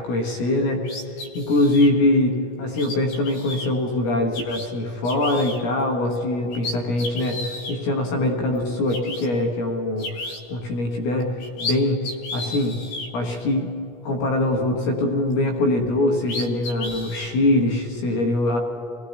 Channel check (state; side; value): late; right; 17 ms